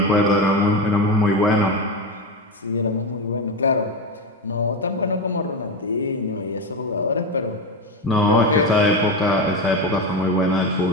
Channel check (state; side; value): normal; both; correlation 0.17